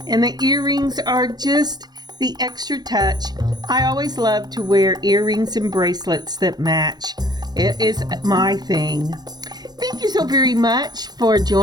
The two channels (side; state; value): left; late; 0.20 ms